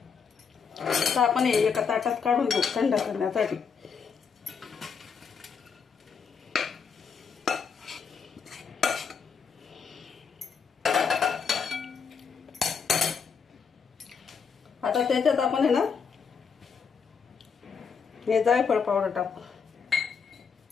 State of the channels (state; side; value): quieter; right; 6.2 dB